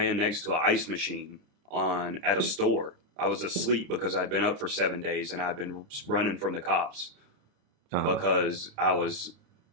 next to an ice machine at a store. I was asleep because I'd been up for 7 days and I'd been running from the cops because I was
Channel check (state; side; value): late; left; 29 ms